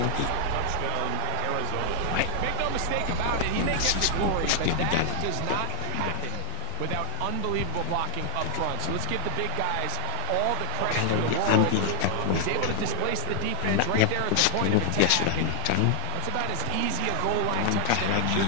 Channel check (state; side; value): different; both; correlation 0.00